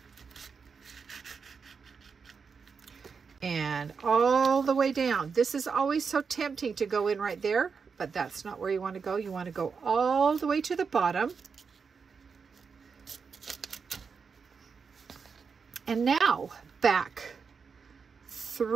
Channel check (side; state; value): left; quieter; 5.6 dB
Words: and all the way down. This is always so tempting to go in right there, but that's not where you want to go. You want to go all the way to the bottom. And now back